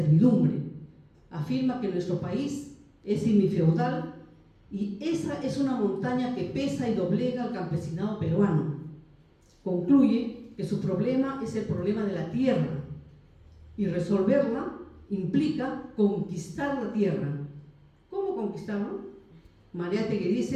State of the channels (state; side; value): identical; both; correlation 1.00